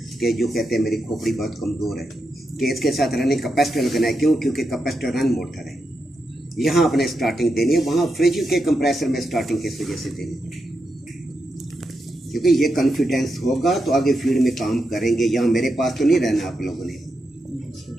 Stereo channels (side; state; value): both; normal; correlation 0.86